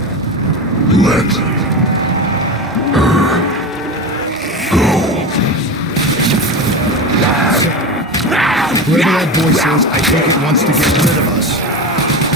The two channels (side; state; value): both; normal; correlation 0.23